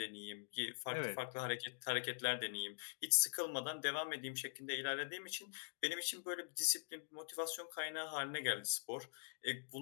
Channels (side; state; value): right; silent; digital silence